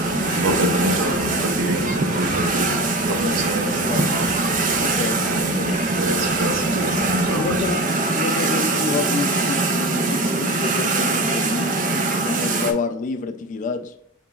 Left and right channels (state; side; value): normal; both; correlation 0.28